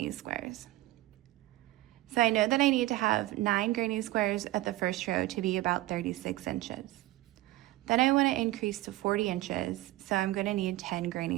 squares. So I know that I need to have 9 granny squares at the first row to be about 36 inches. Then I want to increase to 40 inches, so I'm going to need 10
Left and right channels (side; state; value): left; quieter; 17.4 dB